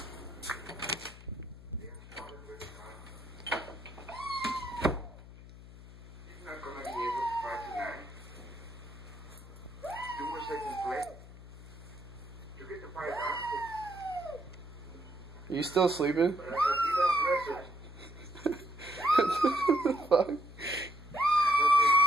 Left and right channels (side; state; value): left; noise; hum, 17 dB below the sound